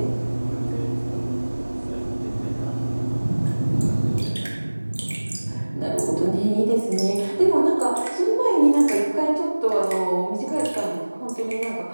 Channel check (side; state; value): both; inverted; correlation -1.00